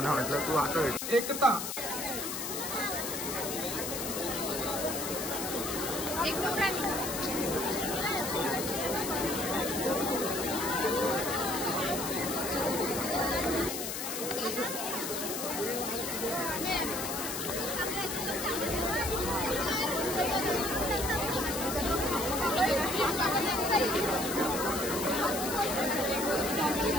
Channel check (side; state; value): left; noise; hiss, 4 dB below the sound